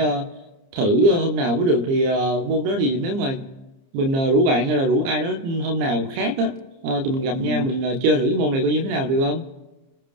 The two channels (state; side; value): late; left; 30 ms